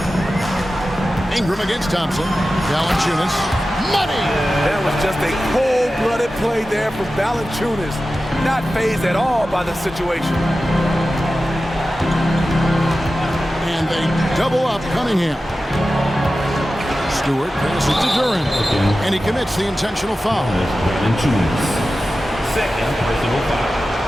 Ingram against Thompson. Valanciunas. Money! That was just a cold-blooded play there for Valanciunas. Not fazed at all by the situation. And they double up Cunningham. Stewart passes to Durant. And he commits the intentional foul. Valanciunas. Second personal foul.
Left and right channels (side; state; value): both; normal; correlation 0.94